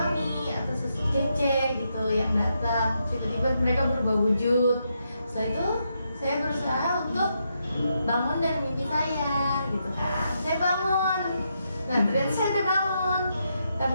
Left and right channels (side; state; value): both; inverted; correlation -0.81